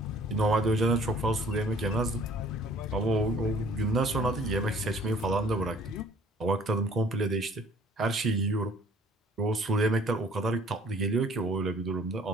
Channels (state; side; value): normal; both; correlation 0.55